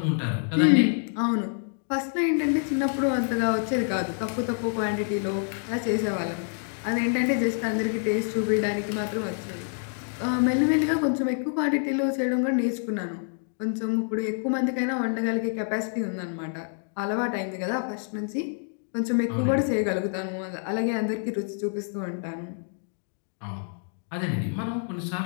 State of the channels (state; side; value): silent; right; 60 dB below the other